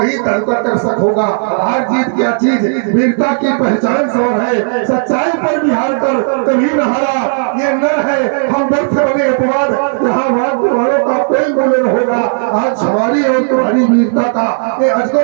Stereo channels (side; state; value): left; silent; digital silence